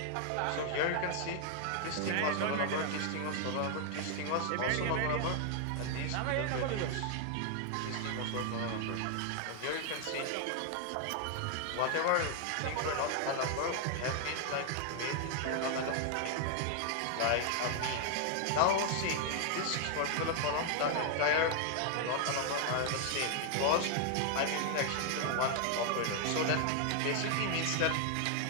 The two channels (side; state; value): both; different; correlation 0.00